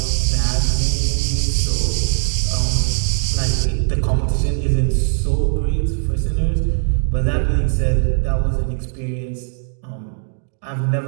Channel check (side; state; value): left; silent; digital silence